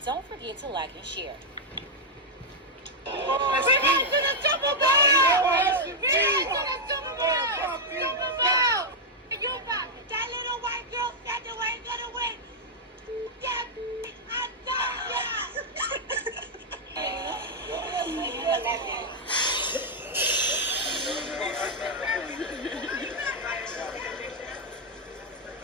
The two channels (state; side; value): normal; both; correlation -0.03